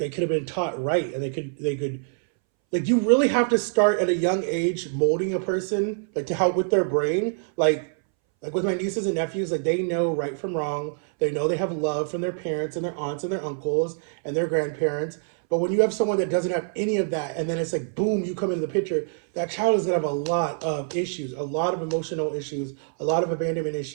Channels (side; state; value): left; silent; 62 dB below the other